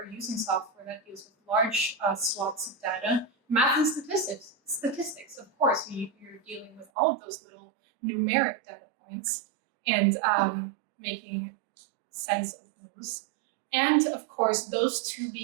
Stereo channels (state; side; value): drops out; left; at 6.9 s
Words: using software that deals with large swaths of data. Math and statistics, of course, you're dealing with all of those little numeric data points and making sense of those. And of course, those two